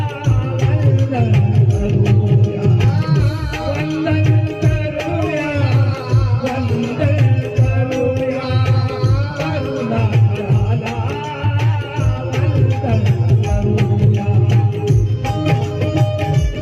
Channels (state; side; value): identical; both; correlation 1.00